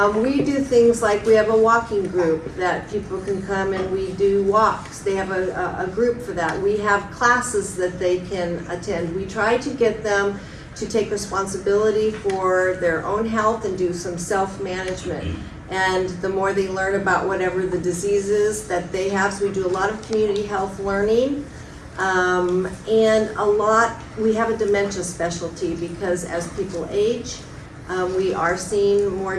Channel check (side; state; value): both; identical; correlation 1.00